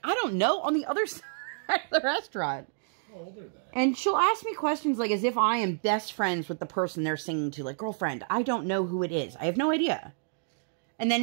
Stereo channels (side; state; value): left; silent; digital silence